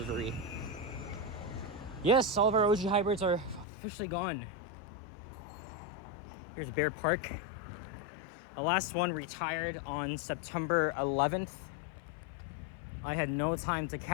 Yes, all of our OG hybrids are officially gone. Here's Bear Park. The last one retired on September 11th. I had no time to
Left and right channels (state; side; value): drops out; right; at 3.7 s